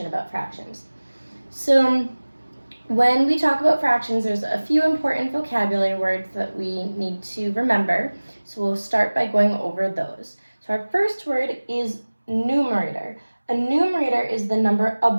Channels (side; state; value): both; inverted; correlation -1.00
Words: about fractions. So when we talk about fractions, there's a few important vocabulary words that we need to remember. So we'll start by going over those. So our first word is numerator. A numerator is the number